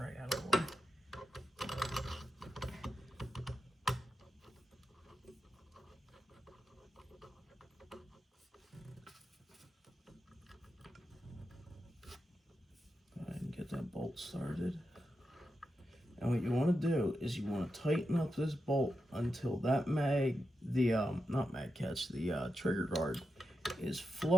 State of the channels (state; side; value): normal; both; correlation 0.88